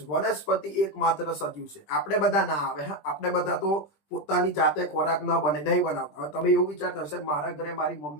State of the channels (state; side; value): late; right; 20 ms